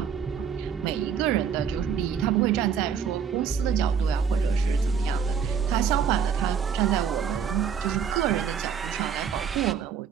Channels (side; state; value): left; quieter; 7.1 dB